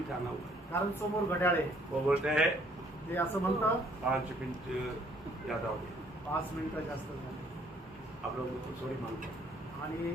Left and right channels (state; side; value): normal; both; correlation 0.62